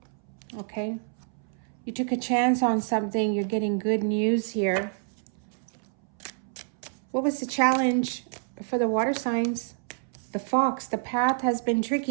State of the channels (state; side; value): silent; left; 60 dB below the other